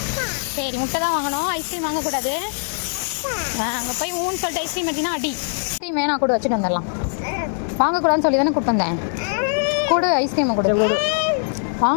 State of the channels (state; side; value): silent; right; 65 dB below the other